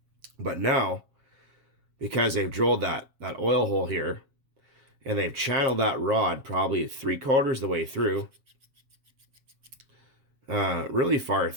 But now, because they've drilled that oil hole here, and they've channeled that rod probably 3/4 the way through, really far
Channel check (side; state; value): left; late; 7.4 ms